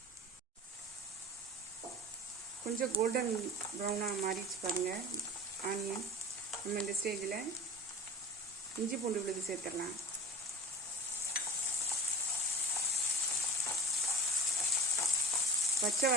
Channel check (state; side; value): normal; both; correlation 0.37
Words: கொஞ்சம் கோல்டன் ப்ரௌனாக மாறிச்சு பாருங்கள் ஆனியன். நம்ம இந்த ஸ்டேஜில் இஞ்சி பூண்டு விழுது சேர்த்துடலாம். பச்சை